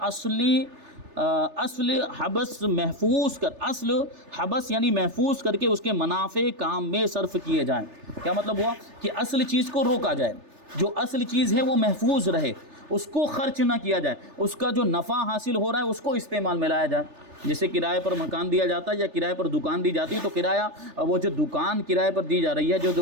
اصل حبس محفوظ کر، اصل حبس یعنی محفوظ کر کے اس کے منافع کام میں صرف کیے جائیں۔ کیا مطلب ہوا؟ کہ اصل چیز کو روکا جائے، جو اصل چیز ہے وہ محفوظ رہے، اس کو خرچ نہ کیا جائے، اس کا جو نفع حاصل ہو رہا ہے اس کو استعمال میں لایا جائے۔ جیسے کرائے پر مکان دیا جاتا ہے یا کرائے پر دکان دی جاتی ہے، تو کرایہ وہ جو دکان کرائے پر دی جا رہی ہے،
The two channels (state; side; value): late; left; 3.4 ms